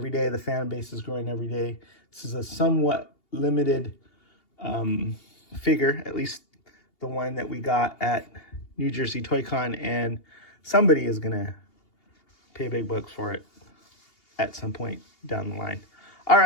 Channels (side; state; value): right; late; 2.8 ms